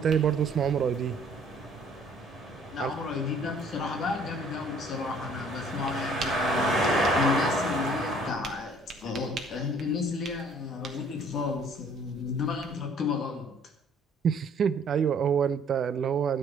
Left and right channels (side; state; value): both; normal; correlation 0.58